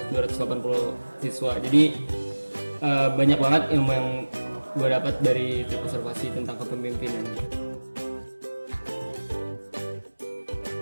siswa. Jadi banyak banget ilmu yang gue dapat dari trip observasi tentang kepemimpinan.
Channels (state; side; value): inverted; both; correlation -1.00